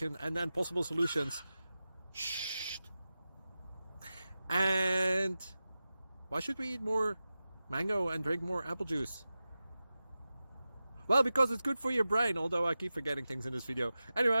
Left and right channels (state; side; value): inverted; both; correlation -0.94